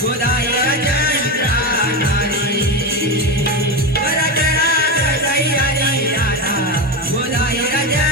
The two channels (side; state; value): both; normal; correlation 0.17